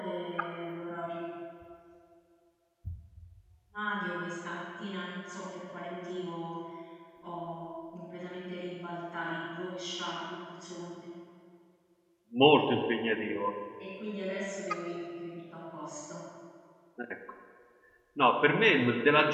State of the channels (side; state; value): both; identical; correlation 1.00